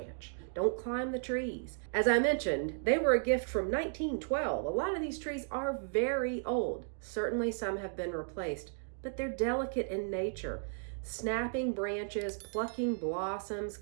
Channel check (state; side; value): silent; left; digital silence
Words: don't climb the trees. As I mentioned, they were a gift from 1912. A lot of these trees are very old. Certainly some have been replaced, but they're delicate in nature. Snapping branches, plucking blossoms,